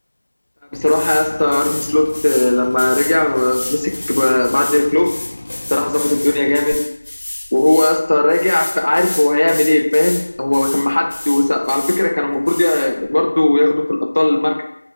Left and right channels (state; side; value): inverted; both; correlation -1.00